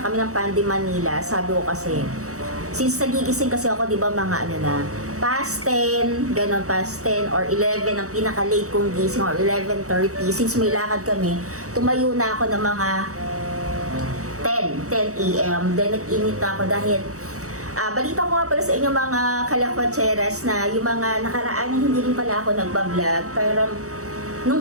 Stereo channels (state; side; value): late; left; 0.65 ms